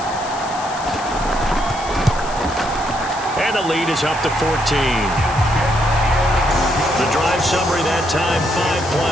And the lead is up to 14. The drive summary that time, 5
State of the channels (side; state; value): left; noise; hiss, 14 dB below the sound